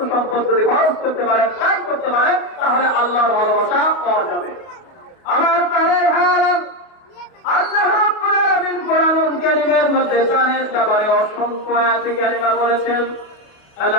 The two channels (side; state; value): right; late; 28 ms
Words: সম্পদ যদি খরচ করতে পারেন, ব্যয় করতে পারেন, তাহলে আল্লাহর ভালোবাসা পাওয়া যাবে। আমার প্রাণের ভাইরা, আল্লাহ রাব্বুল আলামিন কোরআনুল কারীমের মধ্যে দানের ব্যাপারে অসংখ্য আয়াতে কারিমা বলেছেন।